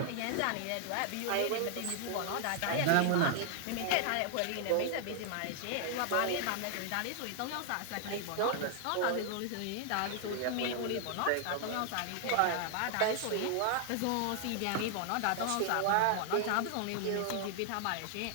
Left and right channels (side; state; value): both; different; correlation 0.00